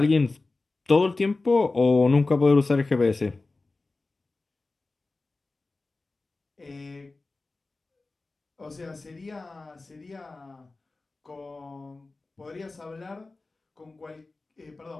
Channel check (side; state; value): right; quieter; 3.4 dB